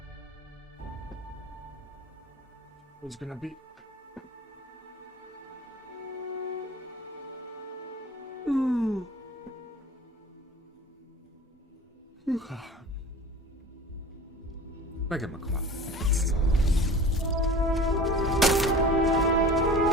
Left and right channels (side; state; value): both; normal; correlation 0.40